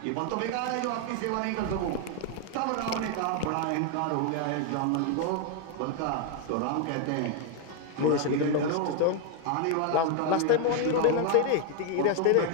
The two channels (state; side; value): different; both; correlation 0.01